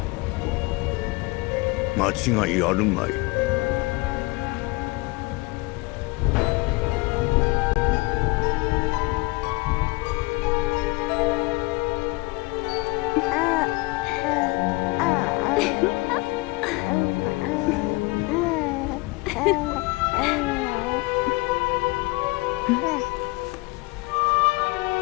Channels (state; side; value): quieter; right; 24.4 dB